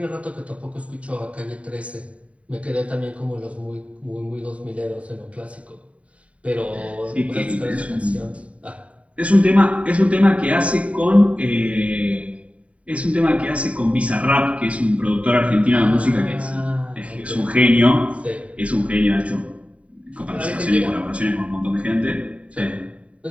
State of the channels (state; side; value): late; left; 0.065 ms